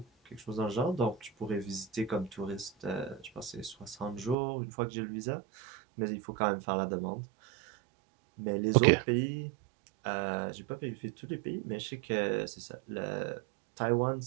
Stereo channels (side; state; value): left; drops out; at 4.4 s